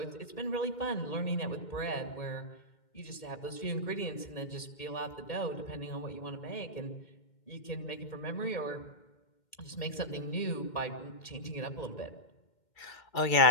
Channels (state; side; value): late; right; 2.1 ms